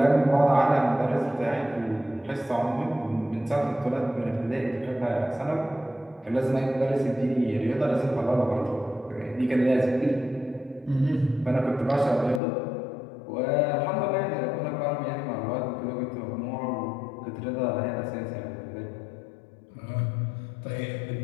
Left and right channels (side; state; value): right; drops out; at 12.4 s